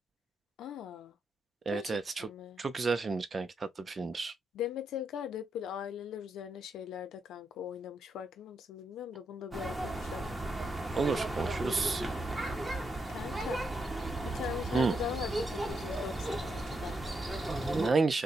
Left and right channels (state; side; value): normal; both; correlation 0.82